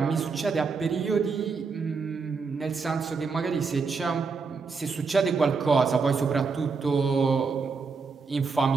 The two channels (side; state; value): left; quieter; 4.9 dB